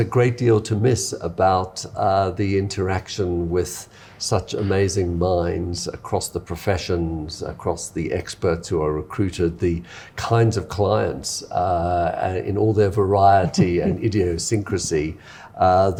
great deal to miss about the interaction with such amazing minds across the professions, across the experts who are recruited, the kinds of clients in all their variety and idiosyncrasy,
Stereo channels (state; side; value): identical; both; correlation 1.00